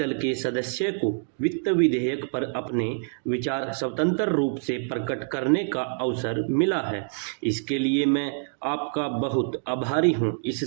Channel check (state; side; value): silent; left; digital silence